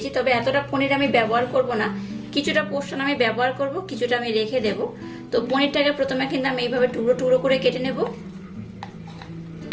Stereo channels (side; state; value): both; identical; correlation 1.00